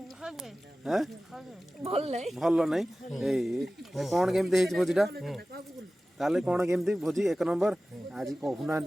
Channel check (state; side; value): normal; both; correlation 0.96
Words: भल नहीं भल नहीं कौन केमी भोजीटा ताले कौन केमती भोजी एक नंबर आज कहूना